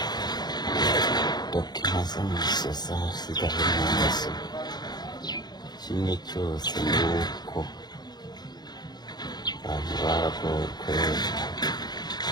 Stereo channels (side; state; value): right; late; 0.20 ms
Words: dokima z'amasosa zigahe mu maso kimwe cyose ni uko abantu baragowe